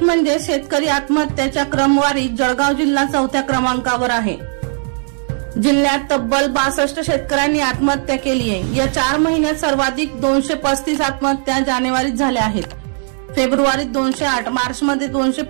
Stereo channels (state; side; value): silent; left; 57 dB below the other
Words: म्हणजे शेतकरी आत्महत्याच्या क्रमवारीत जळगाव जिल्हा 4थ्या क्रमांकावर आहे। जिल्ह्यात तब्बल 62 शेतकऱ्यांनी आत्महत्या केली आहे। या 4 महिन्यात सर्वाधिक 235 आत्महत्या जानेवारीत झाल्या आहेत। फेब्रुवारीत 208, मार्चमध्ये